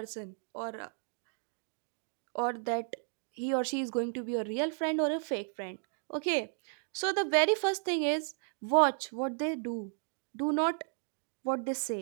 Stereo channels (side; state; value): left; silent; 55 dB below the other